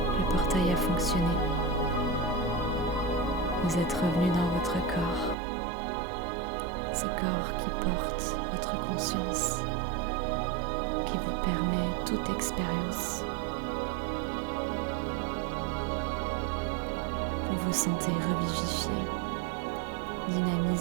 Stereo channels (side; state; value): left; drops out; at 5.4 s